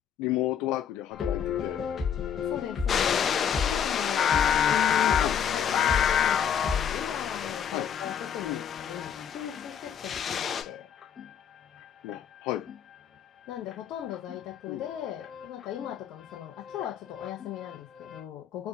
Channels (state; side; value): quieter; right; 8.4 dB